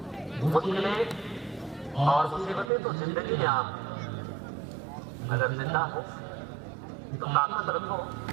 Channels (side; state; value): left; drops out; at 2.7 s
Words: मुश्किलें और मुसीबतें तो जिंदगी में आम, अगर जिंदा हो तो ताकत रखो